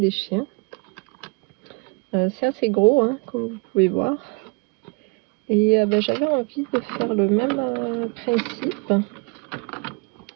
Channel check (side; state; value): left; quieter; 30.7 dB